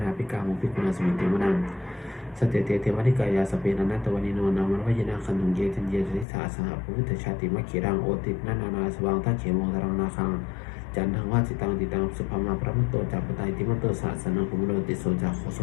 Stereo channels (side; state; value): right; drops out; at 6.2 s